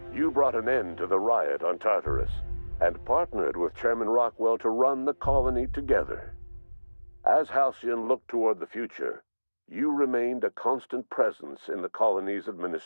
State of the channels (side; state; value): both; inverted; correlation -1.00